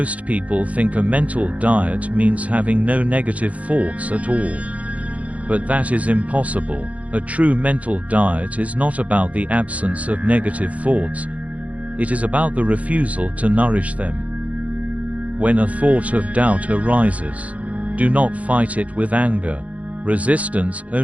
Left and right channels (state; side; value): late; left; 0.067 ms